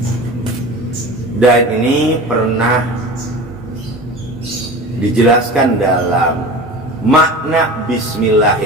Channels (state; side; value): normal; both; correlation 0.34